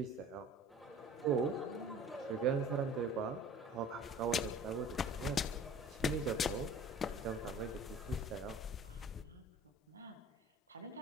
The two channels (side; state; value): both; normal; correlation 0.46